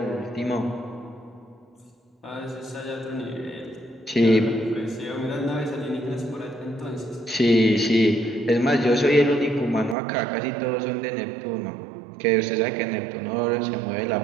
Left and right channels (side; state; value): left; drops out; at 10.0 s